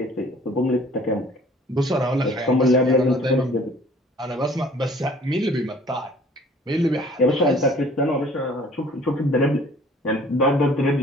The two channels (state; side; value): normal; both; correlation 0.53